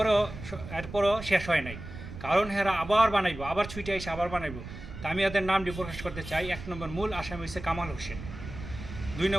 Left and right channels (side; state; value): right; noise; rumble, 11 dB below the sound